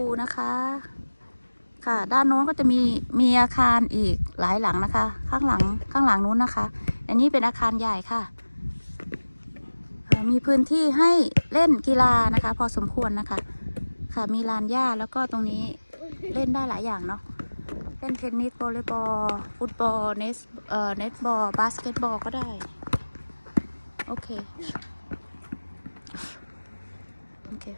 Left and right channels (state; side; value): inverted; both; correlation -1.00